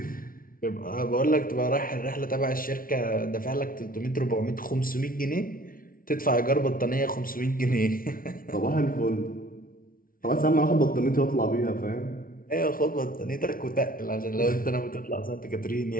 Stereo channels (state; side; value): late; right; 0.42 ms